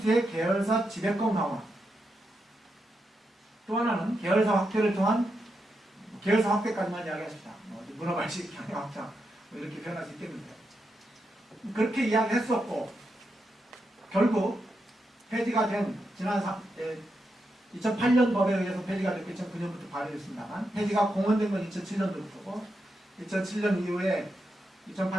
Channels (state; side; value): normal; both; correlation 0.85